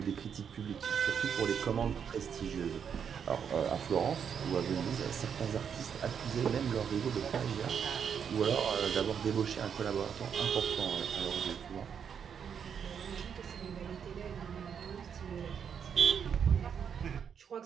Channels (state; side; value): quieter; left; 7.5 dB